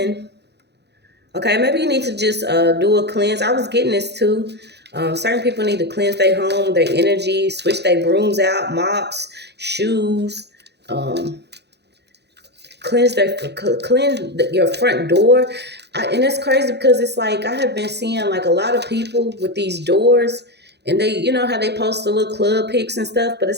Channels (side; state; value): left; late; 0.49 ms